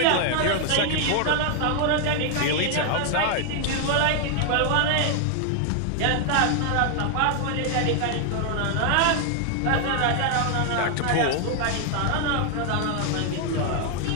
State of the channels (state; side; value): different; both; correlation 0.00